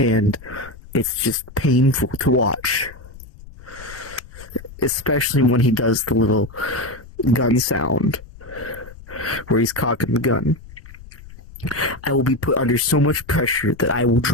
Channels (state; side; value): noise; left; rumble, 18 dB below the sound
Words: it's just painful to watch. Especially when he does the little gun sound where he's cocking the gun. I will be put under so much pressure that I will